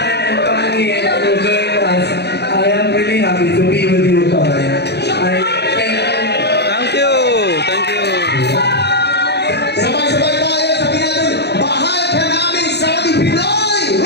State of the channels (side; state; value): right; late; 0.49 ms